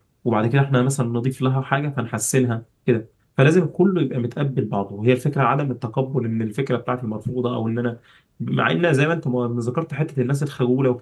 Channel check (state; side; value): identical; both; correlation 1.00